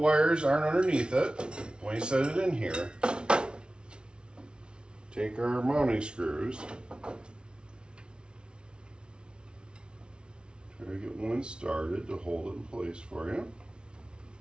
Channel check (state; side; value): late; left; 0.056 ms